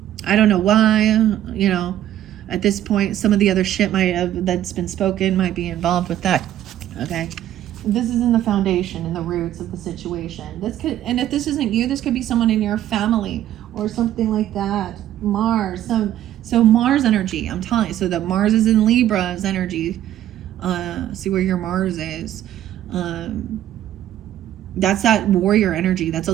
I don't know why, you know, at this point, some of the other shit that's been spoken might be involved with that, okay? This is in the foundation, in the roots of the situation. And if this isn't you, this could be someone in your family or something like that. Mars, so Mars energy, I'm telling you. So that Mars is in Libra's energy. See where your Mars is. That's that warrior energy. That's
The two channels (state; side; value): quieter; left; 12.2 dB